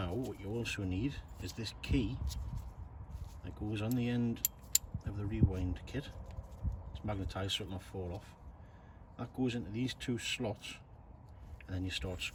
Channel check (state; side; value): identical; both; correlation 1.00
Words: what you also need is this key that goes on the end of the rewind kit. It's magnetized so it'll not fall off. That goes into these two slots, and then you start